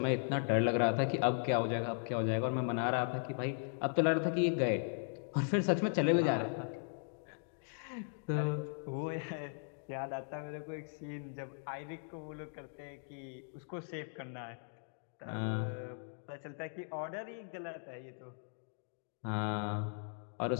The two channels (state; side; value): silent; right; digital silence